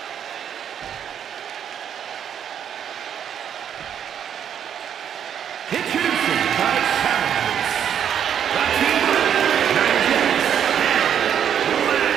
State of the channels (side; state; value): left; quieter; 8.8 dB